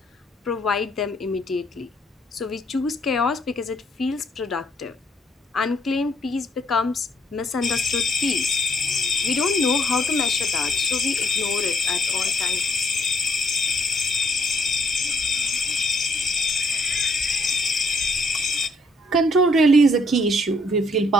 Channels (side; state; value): both; normal; correlation 0.70